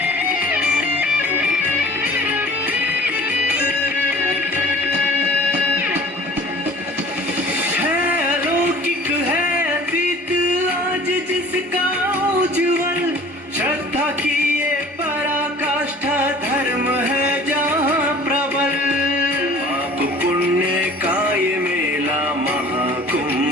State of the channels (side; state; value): both; normal; correlation 0.46